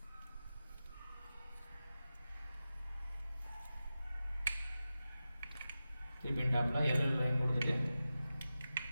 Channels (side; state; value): both; inverted; correlation -0.93